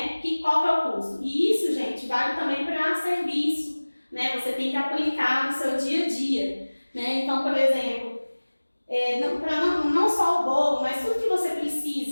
Qual que é o custo? E isso, gente, vale também para serviço. Né? Você tem que aplicar no seu dia a dia. Né? Então, por exemplo, não só o bolo, mas tudo que você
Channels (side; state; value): both; inverted; correlation -1.00